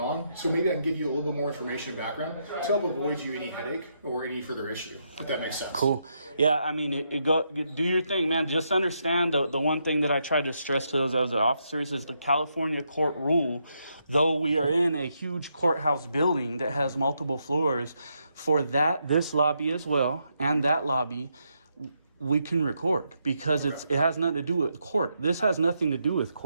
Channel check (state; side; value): inverted; both; correlation -0.80